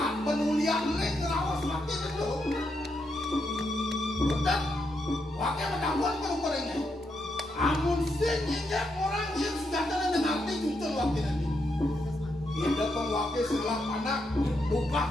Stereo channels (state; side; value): normal; both; correlation 0.81